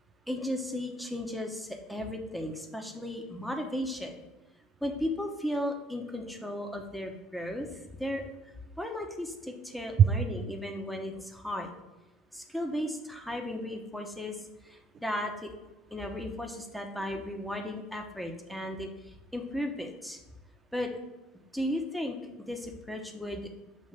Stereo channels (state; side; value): normal; both; correlation 0.68